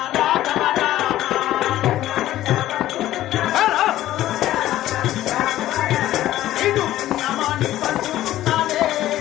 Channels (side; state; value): right; quieter; 14.1 dB